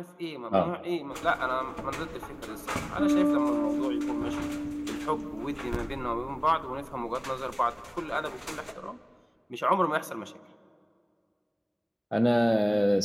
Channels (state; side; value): identical; both; correlation 1.00